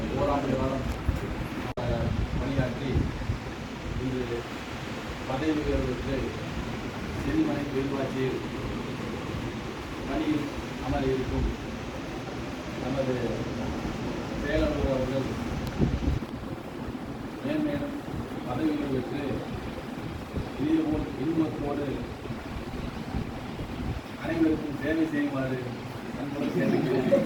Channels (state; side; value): identical; both; correlation 1.00